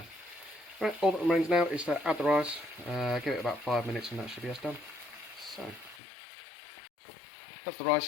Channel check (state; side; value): drops out; right; at 6.0 s